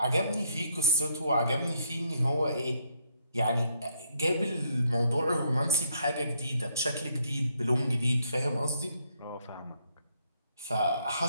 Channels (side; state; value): both; inverted; correlation -0.71